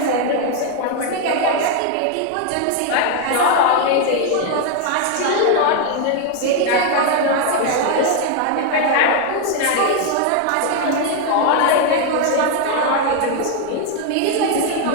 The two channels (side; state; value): both; different; correlation 0.01